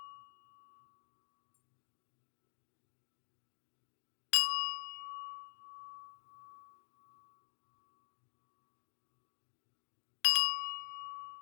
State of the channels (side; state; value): right; silent; digital silence